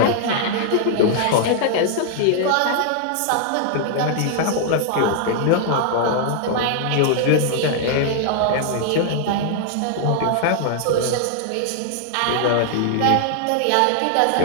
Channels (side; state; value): both; different; correlation -0.01